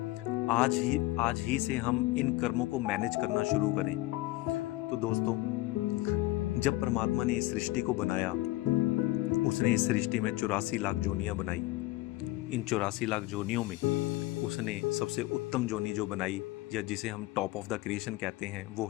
आज ही से हम इन कर्मों को मैनेज करना शुरू करें। तो दोस्तों, जब परमात्मा ने इस सृष्टि को बनाया, उसने इस सृष्टि में 84 लाख जोनियां बनाई। इन 84 लाख जोनियों में उसने सबसे उत्तम जोनी जो बनाई, या जिसे हम टॉप ऑफ द क्रिएशन कहते हैं, वो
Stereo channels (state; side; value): quieter; right; 18.6 dB